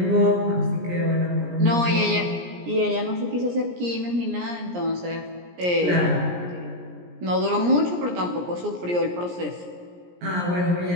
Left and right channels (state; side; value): late; left; 17 ms